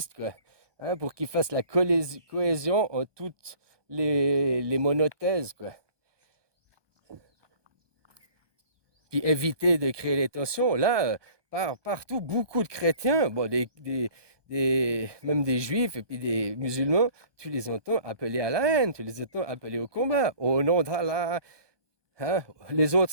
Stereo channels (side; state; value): left; late; 1.2 ms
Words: quoi, hein, pour qu'il fasse la cohésion en toutes les monothèses, quoi. Puis éviter de créer les tensions. Là, partout, beaucoup de chrétiens, bon, même des juifs et puis des musulmans, tu les entends appeler à la haine, tu les entends appeler au combat, au nom d'Allah. Hein? Les autres,